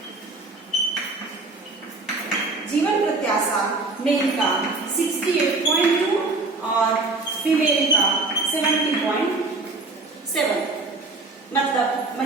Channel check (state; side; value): quieter; left; 3.4 dB